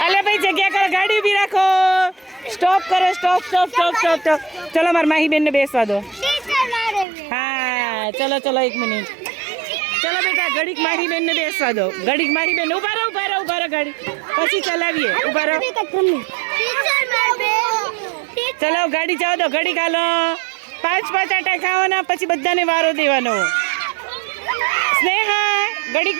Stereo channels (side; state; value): left; drops out; at 7.1 s